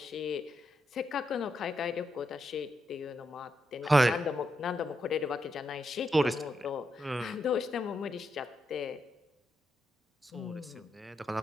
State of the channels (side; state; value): both; normal; correlation 0.83